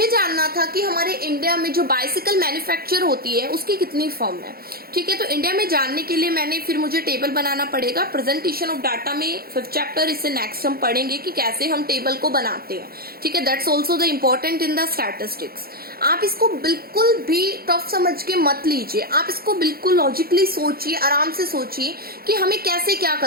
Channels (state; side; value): late; left; 0.44 ms